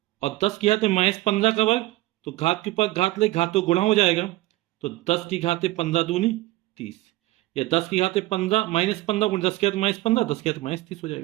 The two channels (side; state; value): left; quieter; 18.4 dB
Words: और 10 की घात -15 का वर्ग, तो घात के ऊपर घात ले, घात तो गुणा हो जाएगा, तो 10 की घात 15 दूनी 30, या 10 की घात 15 -15 गुण 10 की घात -15, 10 की घात -30 हो